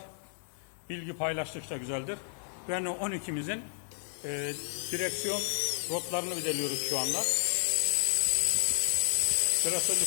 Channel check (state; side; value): silent; right; digital silence